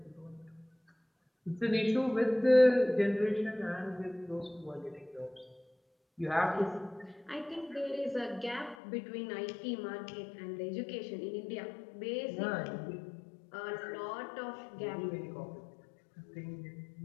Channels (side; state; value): right; drops out; at 8.8 s